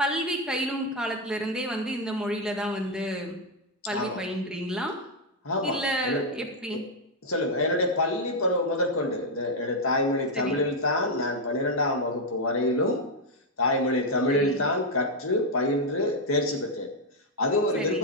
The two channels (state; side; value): normal; both; correlation 0.01